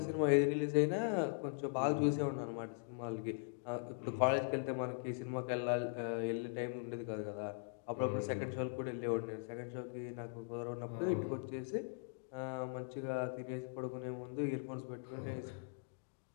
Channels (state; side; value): silent; right; digital silence